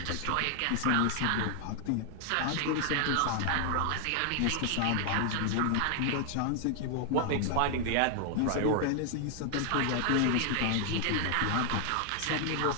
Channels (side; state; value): both; different; correlation 0.00